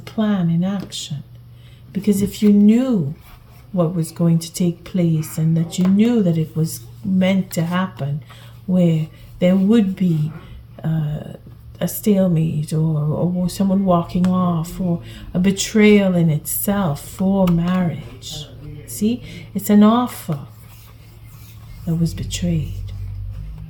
in action. Because if you knew what was going to take place and that you knew that it was meant to happen, where there would be a stalemate or someone walking off or a betrayal in itself for marriage. See, it's an offer that was betrayed.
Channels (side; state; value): both; identical; correlation 1.00